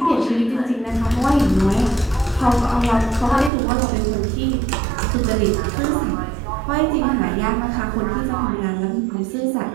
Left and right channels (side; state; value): left; drops out; at 3.5 s